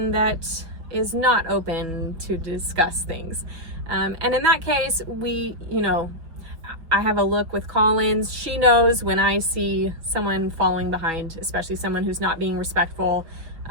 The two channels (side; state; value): left; late; 5.9 ms